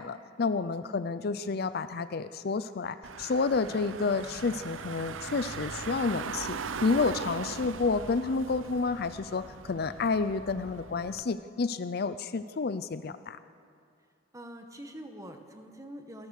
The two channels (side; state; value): right; quieter; 3.3 dB